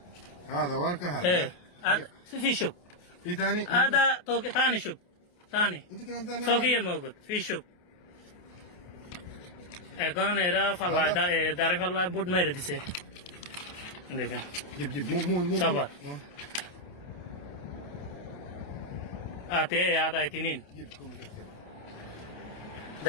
هذا ورقة ايه هذا هذا في شوف في ثاني هذا ثاني شوف ثاني انت كلام ثاني فوقيه موجود في شوف এখন এরা ফাল্লা দাঁড়ি ফাল্লা বুট মেরে দিছে। দেখেন جيب جيب مو صبر هذا اثنين جيب كل كثير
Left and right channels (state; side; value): late; right; 28 ms